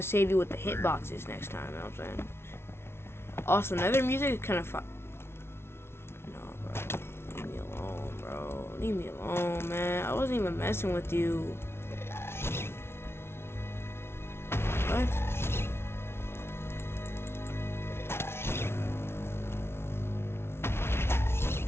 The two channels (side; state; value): right; late; 0.12 ms